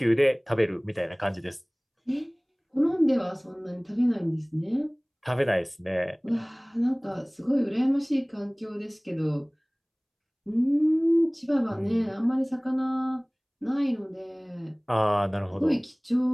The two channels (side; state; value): both; identical; correlation 1.00